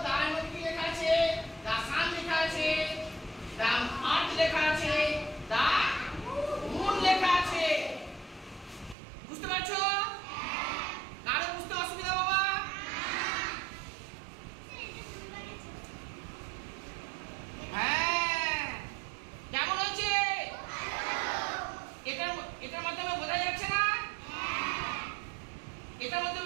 দার মধ্যে কি লেখা আছে দা সান লেখা আছে দা আর্ট লেখা আছে দা মুন লেখা আছে বুঝতে পারছো কারো বুঝতে অসুবিধা বাবা হ্যাঁ কেমন হয়েছে এটার মাধ্যমে বোঝা যাচ্ছে না এটার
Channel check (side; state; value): left; drops out; at 9.0 s